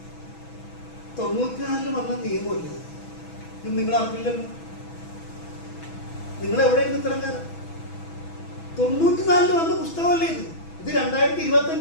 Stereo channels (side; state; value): right; late; 6.1 ms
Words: 94 വന്ന നിയമമല്ലേ ഇത്? നിങ്ങൾ അറിഞ്ഞില്ലല്ലോ. നിങ്ങൾ എവിടെയാണ് ഇത്രയും കാലം? 94 വന്ന പുസ്തകമല്ലേ ഇത്? ഇത്